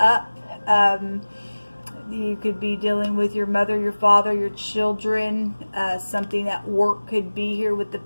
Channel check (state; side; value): inverted; both; correlation -1.00